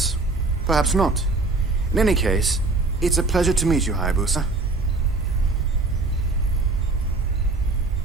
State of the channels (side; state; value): left; quieter; 3.5 dB